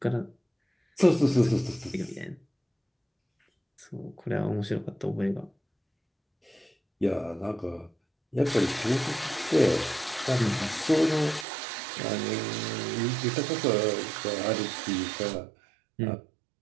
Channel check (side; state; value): left; drops out; at 11.5 s